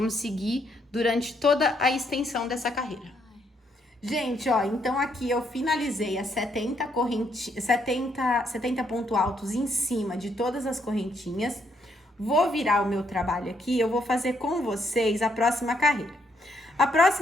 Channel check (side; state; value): both; normal; correlation 0.73